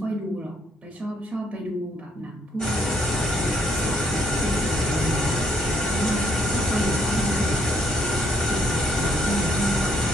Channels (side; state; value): both; normal; correlation 0.68